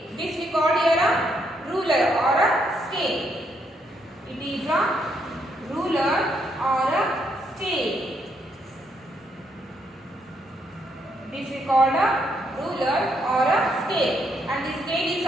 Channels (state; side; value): normal; both; correlation 0.75